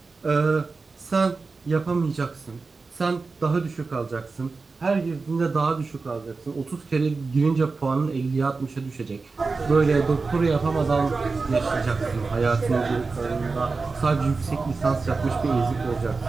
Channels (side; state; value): left; quieter; 4.1 dB